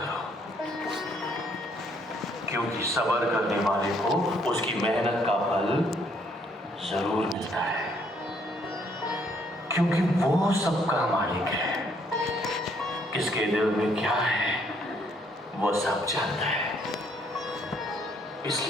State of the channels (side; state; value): both; normal; correlation 0.67